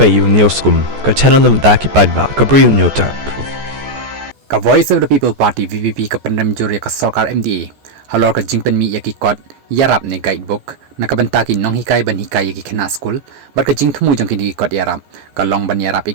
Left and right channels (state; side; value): late; left; 14 ms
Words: U ka channel nabynta ki paidbah ka Bri U Hynñiewtrep. Ka Voice of the People Party VVP ka pendam juri ka Sarkar MDA Halor ka jingpen mi yaki kot yarap ne guidebook na kabanta ki nong hikai ban hikai yaki khana school bar ka jing thumu jong ki kot yarap ka long ban yarap